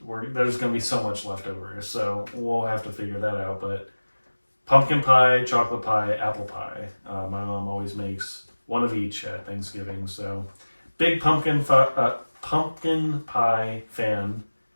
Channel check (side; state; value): both; inverted; correlation -1.00